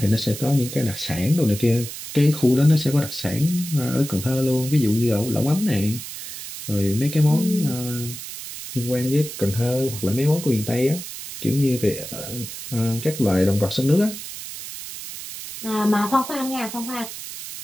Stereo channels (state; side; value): noise; right; hiss, 10 dB below the sound